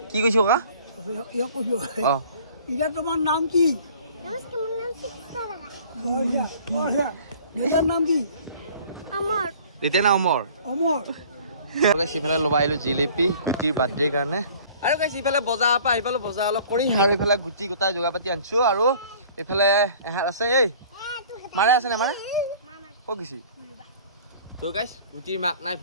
কি কৈছো ককা অ ইয়া তোমাৰ নাম কি এটাৰ নাম কি আমাৰ এতিয়া না অমৰ অমৰ সিফালে ল'বা আহিলো জিলেপি গুটিৰ বাৰ্থডেৰ কাৰণে আৰু গাইছ ইফালে বজাৰৰ পৰা আহি পালো বজাৰ অলপ কৰি আৰু ইফালে গুটি গোটাই যোগাৰ পাতি আনিছো আৰু এইফালে এহাত আছে এই মাৰে আছে নে মাৰে ক'ত গৈছি তো গাইছ গুটিৰ মাক নাই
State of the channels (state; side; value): inverted; both; correlation -0.49